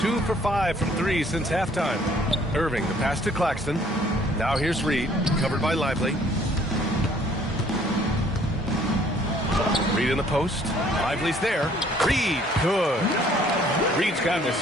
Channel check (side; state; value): both; normal; correlation 0.59